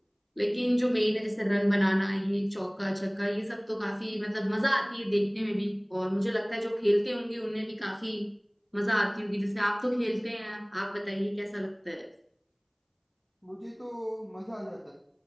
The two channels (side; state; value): both; identical; correlation 1.00